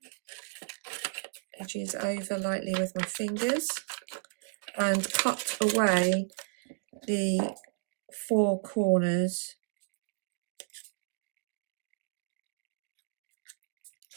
edges over lightly with my fingers and cut away the 4 corners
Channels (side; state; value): left; silent; digital silence